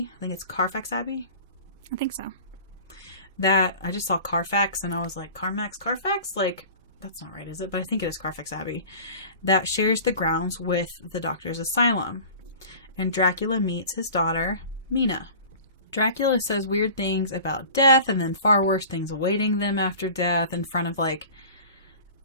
I think it's Carfax Abbey. I think so. That, I just saw Carfax and I was like, Carfax? Like, that's not right, is it? But I think it is Carfax Abbey. That shares the grounds with the doctor's asylum. And Dracula meets his daughter, Mina. Dracula says weird things about death and then far worse things awaiting them after death in front of, like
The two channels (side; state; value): both; inverted; correlation -0.40